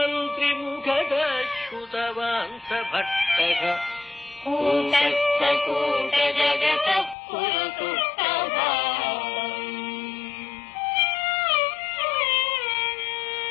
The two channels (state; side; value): drops out; right; at 7.2 s